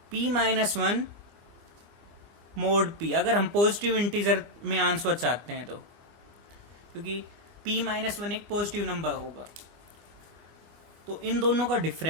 p minus 1 mod p। अगर हम पॉजिटिव इंटीजर में आंसर चाहते हैं तो, क्योंकि p माइनस 1 एक पॉजिटिव नंबर होगा, तो इन दोनों का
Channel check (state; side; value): late; left; 25 ms